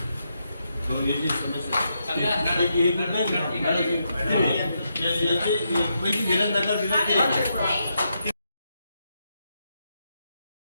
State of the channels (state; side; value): inverted; both; correlation -0.82